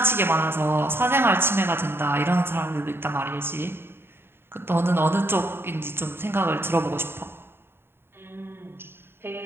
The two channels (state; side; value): late; left; 0.11 ms